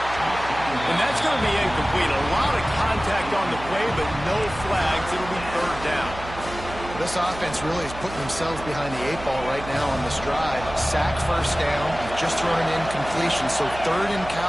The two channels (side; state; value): right; noise; hum, 12 dB below the sound